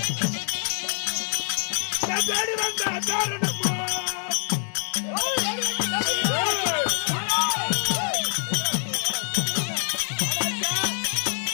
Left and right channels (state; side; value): silent; right; digital silence